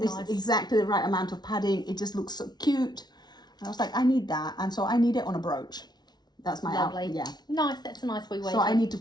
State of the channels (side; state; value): right; late; 0.20 ms